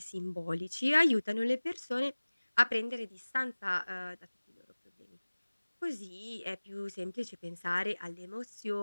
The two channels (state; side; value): inverted; both; correlation -1.00